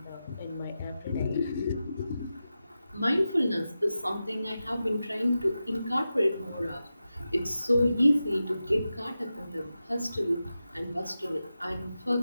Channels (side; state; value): both; inverted; correlation -0.92